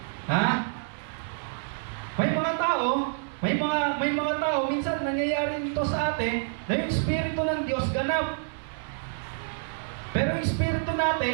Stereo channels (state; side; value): silent; left; 59 dB below the other